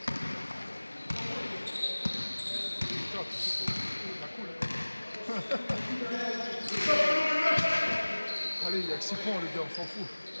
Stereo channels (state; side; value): inverted; both; correlation -1.00